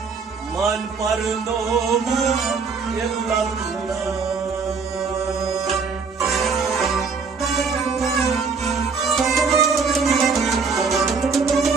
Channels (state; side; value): quieter; left; 5.0 dB